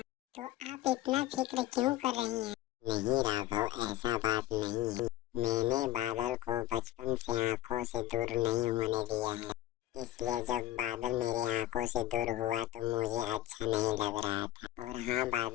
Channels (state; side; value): quieter; right; 15.0 dB